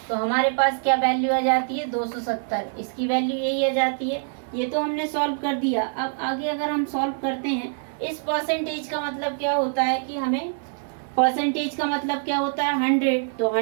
तो हमारे पास क्या वैल्यू आ जाती है 270। इसकी वैल्यू यही आ जाती है। ये तो हमने सॉल्व कर दिया। अब आगे अगर हम सॉल्व करते हैं इस परसेंटेज का मतलब क्या होता है कि हमें परसेंटेज का मतलब क्या होता है 100। तो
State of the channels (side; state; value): left; silent; digital silence